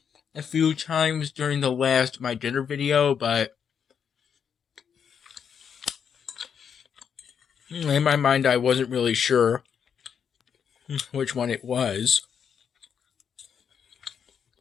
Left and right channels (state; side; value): quieter; right; 7.4 dB